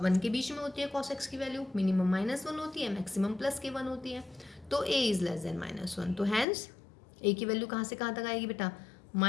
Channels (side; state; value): right; drops out; at 6.5 s